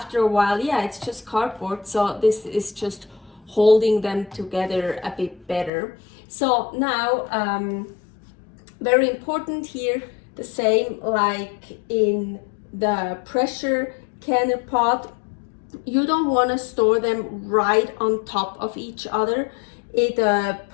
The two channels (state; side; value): drops out; right; at 5.7 s